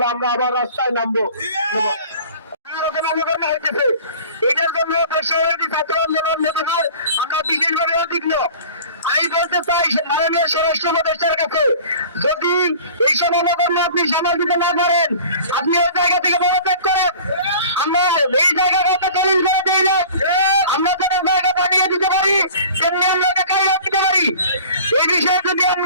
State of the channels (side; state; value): both; inverted; correlation -0.43